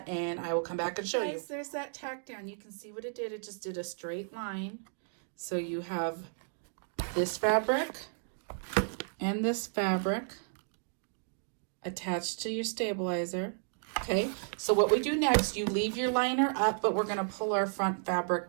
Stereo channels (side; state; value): left; silent; digital silence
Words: and I will come back and show you. There's that tack down. You can see what it did. It just did a straight line. So you have this fabric and this fabric attached to your stabilizer. Okay, so what we do next, you leave your liner up, but we're going to pull our front